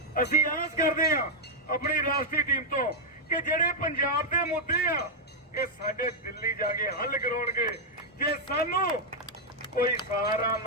असीं आस करदे हां अपनी राष्ट्रीय टीम तो कि जिहड़े पंजाब दे मुद्दे आ ये साडे दिल्ली जाके हल कराउणगे। जे सानू कोई सहारा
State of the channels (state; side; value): normal; both; correlation -0.02